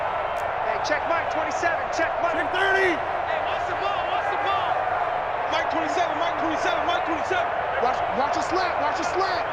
Hey, check Mike 27, check Mike 30. Hey, what's the ball? What's the ball? Mike 27, Mike 27, Mike 27. Watch a slap, watch a slap.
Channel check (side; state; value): both; identical; correlation 1.00